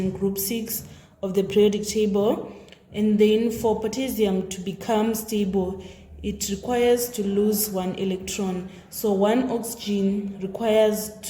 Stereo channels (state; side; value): identical; both; correlation 1.00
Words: group 6 of the periodic table. And then for potassium to become stable, it requires to lose 1 electron. So 1 oxygen requires